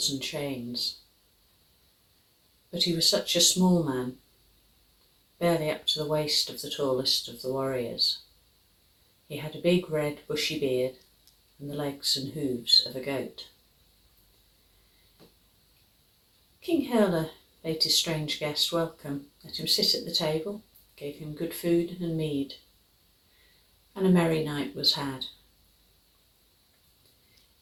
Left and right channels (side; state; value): both; identical; correlation 1.00